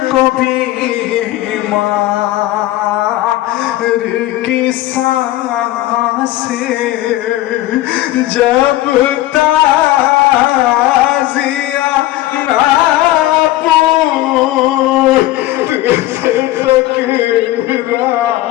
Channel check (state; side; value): quieter; right; 15.8 dB